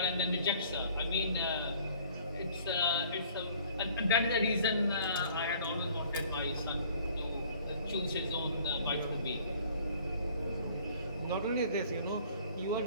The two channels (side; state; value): both; inverted; correlation -0.54